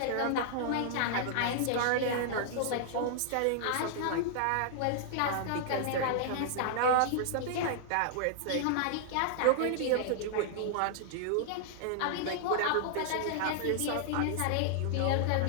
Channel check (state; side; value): different; both; correlation -0.01